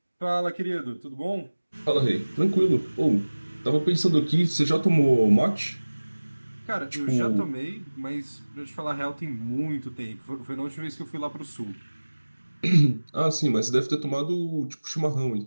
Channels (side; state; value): both; inverted; correlation -1.00